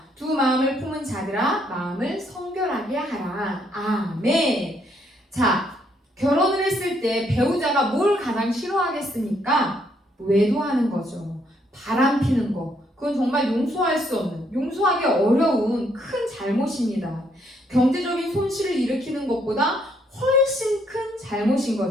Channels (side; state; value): both; normal; correlation 0.71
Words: 두 마음을 품은 자들아 마음을 성결하게 하라. 아멘. 자, 결혼을 했을 때 배우자가 뭘 가장 싫어하겠습니까? 외도하는 거죠. 바람 피는 거. 그건 정말 용서할 수 없는, 용서하기 어려운 큰 잘못입니다. 경제적인 손실을 일으키는 것보다 훨씬 큰 잘못인